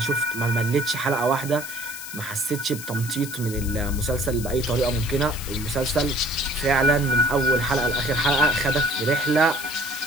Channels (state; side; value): noise; left; hiss, 11 dB below the sound